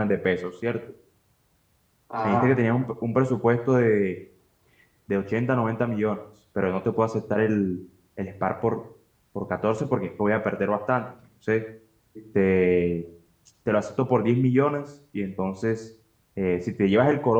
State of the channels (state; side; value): identical; both; correlation 1.00